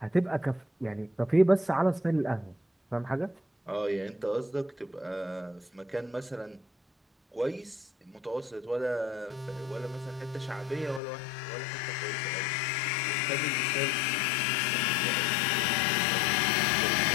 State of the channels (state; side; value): drops out; right; at 11.0 s